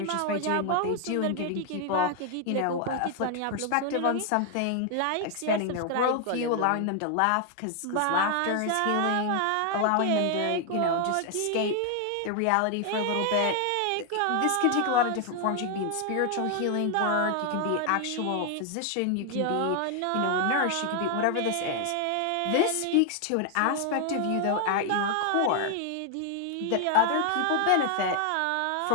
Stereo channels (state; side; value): different; both; correlation 0.00